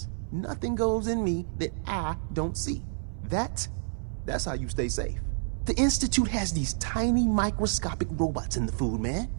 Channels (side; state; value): left; silent; 57 dB below the other